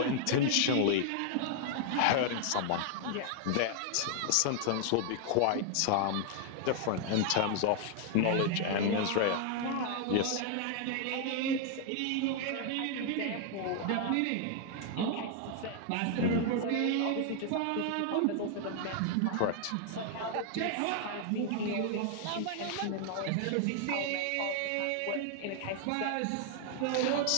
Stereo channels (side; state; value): both; different; correlation 0.00